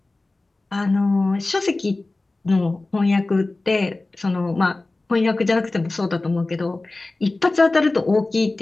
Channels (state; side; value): quieter; right; 3.1 dB